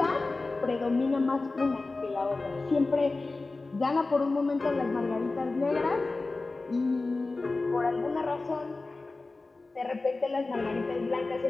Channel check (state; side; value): quieter; right; 3.5 dB